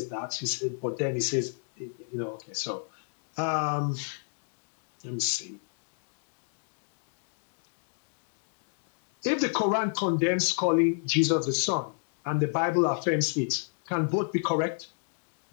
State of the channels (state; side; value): silent; right; 57 dB below the other